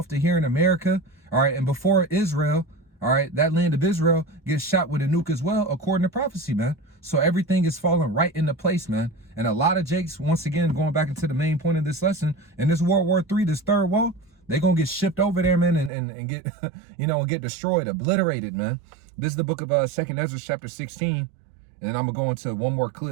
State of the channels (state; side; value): drops out; left; at 15.9 s